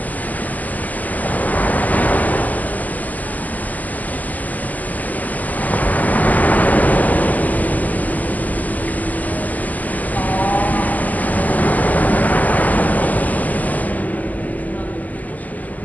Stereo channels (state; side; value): late; right; 0.080 ms